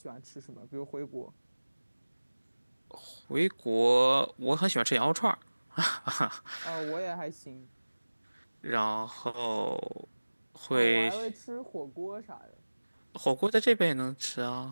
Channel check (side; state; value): both; inverted; correlation -1.00